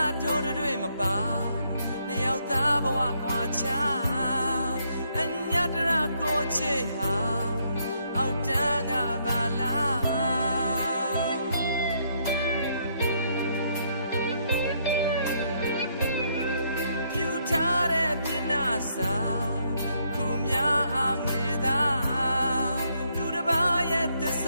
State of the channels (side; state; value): both; inverted; correlation -0.73